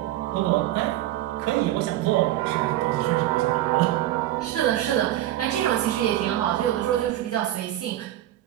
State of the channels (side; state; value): left; quieter; 13.9 dB